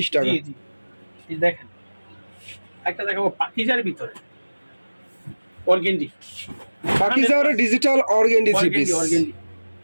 টাকা। জি জি, এই দেখেন একটা দেখাবো পাকিজার ভিতরে organdie, পাকিজার digital organdie three piece. Organdie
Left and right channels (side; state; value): both; inverted; correlation -1.00